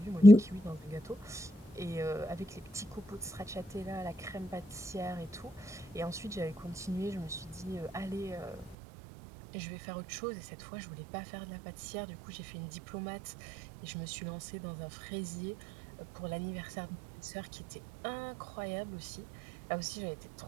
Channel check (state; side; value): drops out; left; at 8.8 s